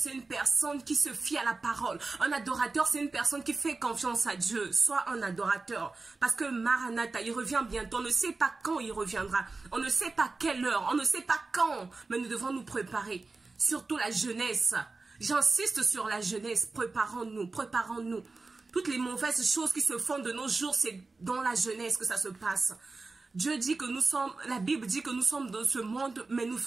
une personne qui se fie à la parole. Un adorateur, c'est une personne qui fait confiance à Dieu. Sois un adorateur. Parce que Maranatha, il revient bientôt. On ne sait pas quand il reviendra. On ne sait pas quelle heure. On ne sait pas quand. Mais nous devons nous préparer. Surtout la jeunesse. J'insiste sur la jeunesse. Préparons-nous. Préparons-nous. Toutes les mauvaises choses qui se font de nos jours, c'est dans la jeunesse que ça se passe. Dieu dit que nous sommes, la Bible dit que nous sommes dans ce monde, mais nous ne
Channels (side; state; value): left; quieter; 3.7 dB